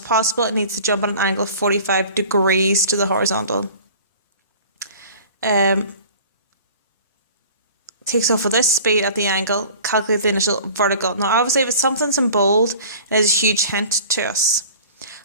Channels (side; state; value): both; inverted; correlation -0.44